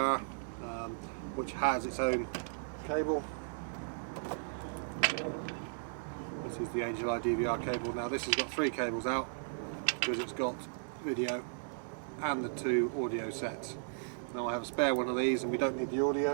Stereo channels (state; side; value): silent; left; digital silence